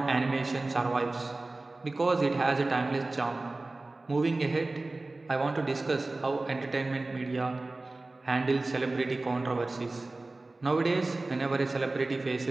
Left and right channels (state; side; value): quieter; left; 3.1 dB